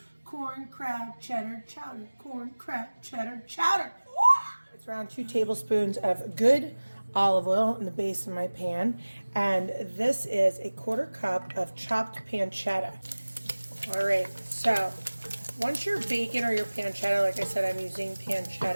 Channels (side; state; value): both; inverted; correlation -1.00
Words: Corn crab cheddar chowder. Corn crab cheddar chowder. It's around 2 tablespoons of good olive oil in the base of my pan. And this is a 1/4 cup of chopped pancetta. All right, so once your bacon or your pancetta, like I said, I'm using